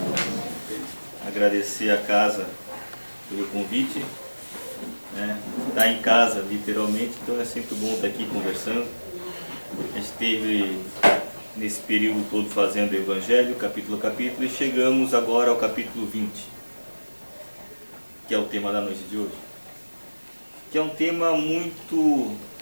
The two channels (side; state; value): both; inverted; correlation -1.00